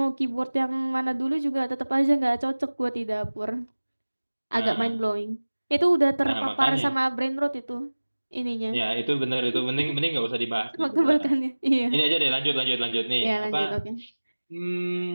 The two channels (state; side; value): inverted; both; correlation -1.00